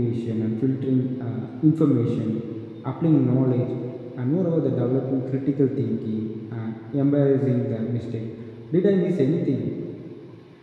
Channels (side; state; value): both; identical; correlation 1.00